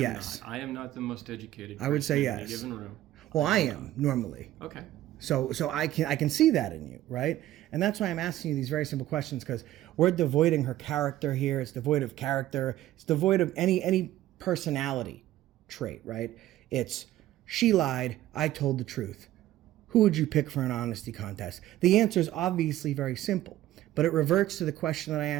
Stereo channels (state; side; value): quieter; left; 14.2 dB